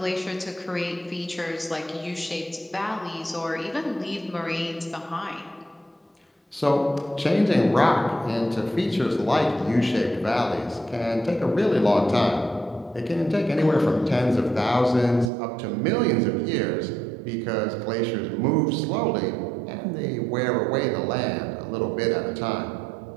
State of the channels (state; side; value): drops out; left; at 15.3 s